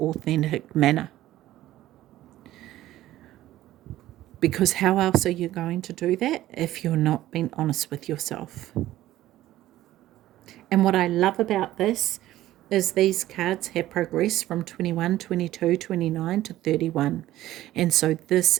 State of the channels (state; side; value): quieter; left; 14.6 dB